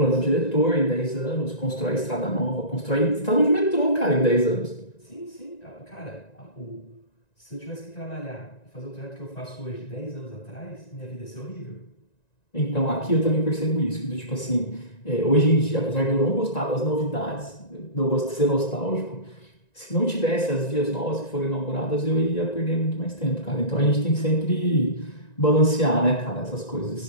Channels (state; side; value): late; right; 1.9 ms